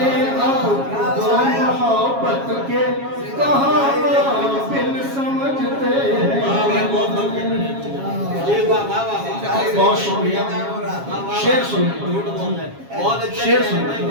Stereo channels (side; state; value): left; late; 7.3 ms